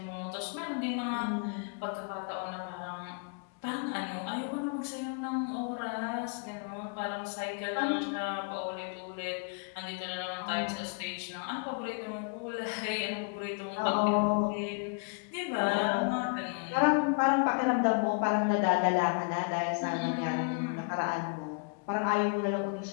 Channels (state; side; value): quieter; right; 35.1 dB